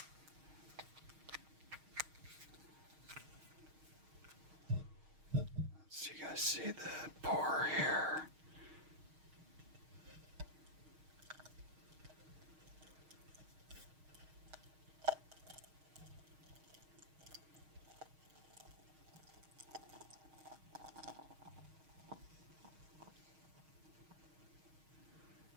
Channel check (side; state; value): left; late; 6.4 ms